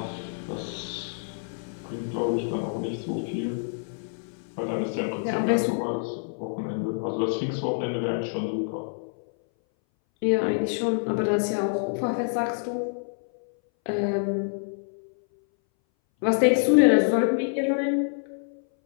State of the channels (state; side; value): silent; right; 60 dB below the other